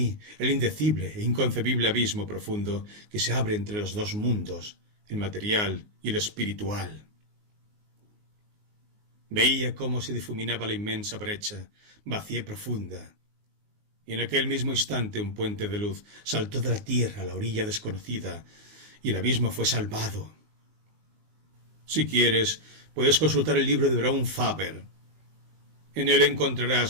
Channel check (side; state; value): left; late; 19 ms